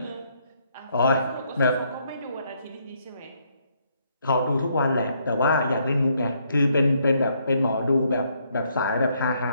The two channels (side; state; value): both; inverted; correlation -0.72